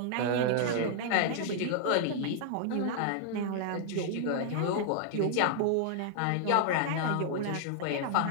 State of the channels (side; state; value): both; different; correlation -0.01